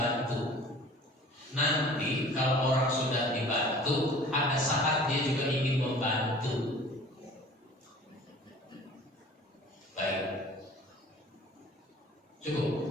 Nanti kalau orang sudah dibantu, ada saat dia juga ingin membantu. Baik. Cukup.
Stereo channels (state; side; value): normal; both; correlation 0.46